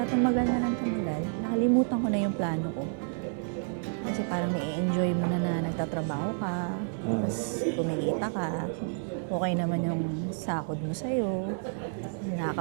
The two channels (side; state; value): left; silent; digital silence